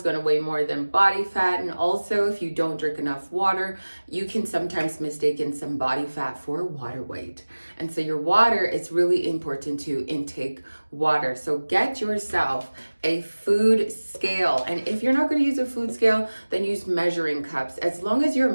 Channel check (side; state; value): both; inverted; correlation -1.00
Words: going to weigh more than body fat. And also, if you don't drink enough water, you can sometimes mistake some body fat for water weight. And so your water, it's really important to intake water. So get yourself a food scale. And if you're not going to use a food scale, then use measuring cups, as long as you're